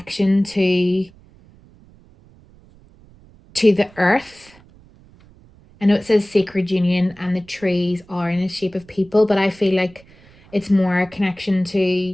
to the earth. I know it says Sacred Union and the trees are in the shape of people, but I feel like it's more a connection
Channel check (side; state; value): right; noise; rumble, 26 dB below the sound